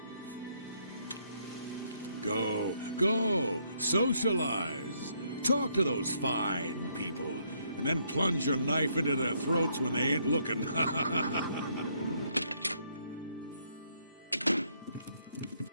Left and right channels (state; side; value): inverted; both; correlation -0.71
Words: Go, socialize. Talk to those fine people, and then plunge your knife into their throats when they ain't looking.